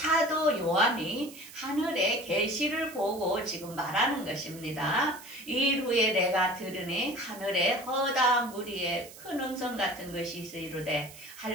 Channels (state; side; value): noise; right; hiss, 18 dB below the sound